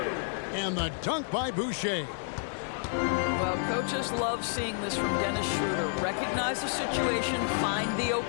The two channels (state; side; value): silent; right; digital silence